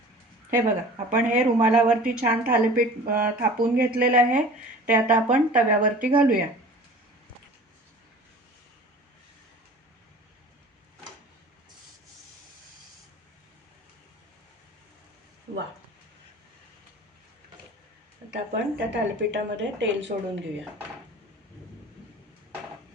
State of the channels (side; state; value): both; normal; correlation 0.43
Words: हे बघा, आपण हे रुमालावरती छान थालीपीठ थापून घेतलेलं आहे. ते आता आपण तव्यावरती घालूया. वा, आता आपण त्या थालीपीठामध्ये तेल सोडून घेऊया.